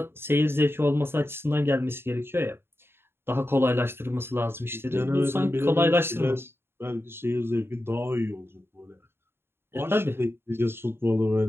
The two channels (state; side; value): late; left; 0.11 ms